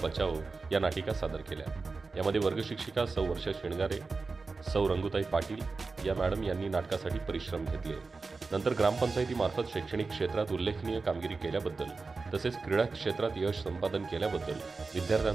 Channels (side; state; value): left; quieter; 4.1 dB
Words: बचाओ या नाटिका सादर केल्या। यामध्ये वर्गशिक्षिका सौ वर्षा शेणगारे, सौ रंगुताई पाटील या मॅडम यांनी नाटकासाठी परिश्रम घेतले। नंतर ग्रामपंचायतीमार्फत शैक्षणिक क्षेत्रात उल्लेखनीय कामगिरी केल्याबद्दल तसेच क्रीडा क्षेत्रात यश संपादन केल्याबद्दल